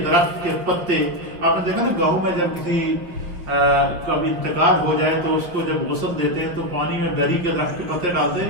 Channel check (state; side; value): late; left; 5.4 ms